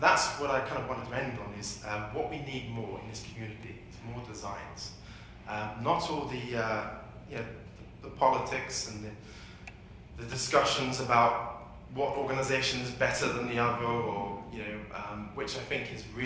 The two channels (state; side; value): identical; both; correlation 1.00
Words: what I kind of wanted to end on, is what we need more in this community is more designs. Not all the politics and the discussions about what organization is better than the other, or which I think is